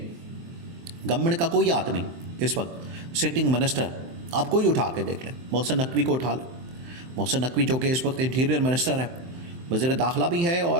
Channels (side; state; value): left; late; 23 ms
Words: गवर्नमेंट का कोई हाथ नहीं इस वक्त। सिटिंग मिनिस्टर आप कोई उठा के देख लें, मोहसिन नकवी को उठा लें। मोहसिन नकवी जो कि इस वक्त इंटीरियर मिनिस्टर है, वज़ीर दाखिला भी है